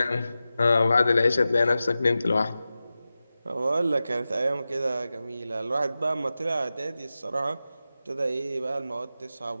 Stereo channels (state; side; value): inverted; both; correlation -0.93